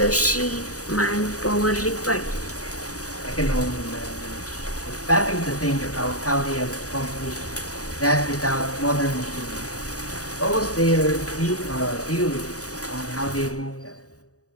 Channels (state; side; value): late; right; 0.66 ms